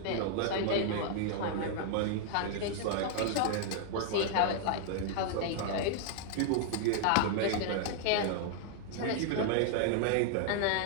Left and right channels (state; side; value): different; both; correlation -0.01